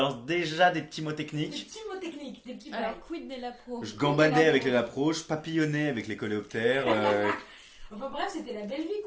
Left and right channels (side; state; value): both; identical; correlation 1.00